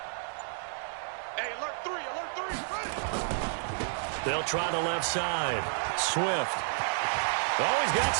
They'll try the left side. Swift. Oh, he's got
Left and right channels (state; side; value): silent; left; digital silence